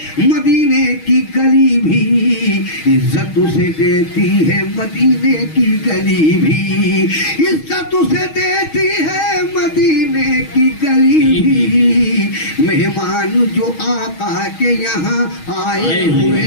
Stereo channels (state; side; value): late; right; 6.3 ms